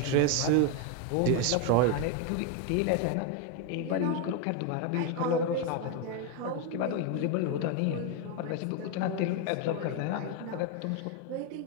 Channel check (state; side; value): different; both; correlation 0.02